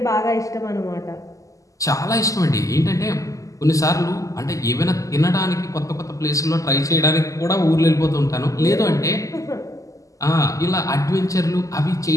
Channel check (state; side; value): late; right; 0.16 ms